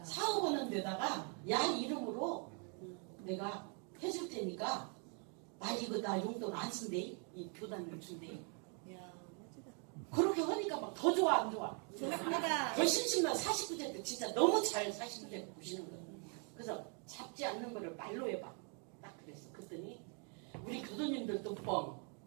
사업 하는 데다가 야 이름으로 내가 해줄 테니까 나 용돈 안 쓴대. 이 교단을 준대. 이야, 멋지다. 그렇게 하니까 막 더 좋아 안 좋아? 좋습니다. 더 심심한 49세 때 진짜 너무 잘 49세 보시는 거예요. 그래서 잡지 않는 거를 말로 해봐. 딱 그랬어. 그랬더니 우리 교도님들도 뻥,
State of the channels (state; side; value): quieter; left; 38.8 dB